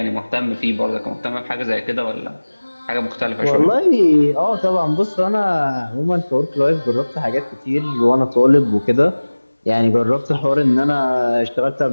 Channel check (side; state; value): both; inverted; correlation -1.00